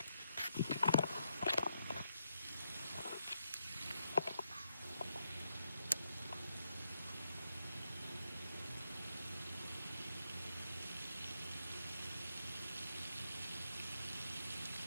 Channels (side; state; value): both; inverted; correlation -0.82